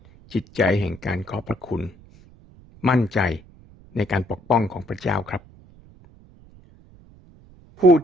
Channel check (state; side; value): noise; right; rumble, 25 dB below the sound